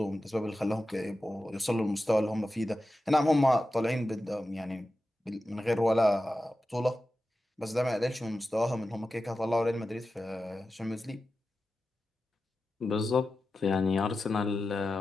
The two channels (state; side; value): normal; both; correlation 0.93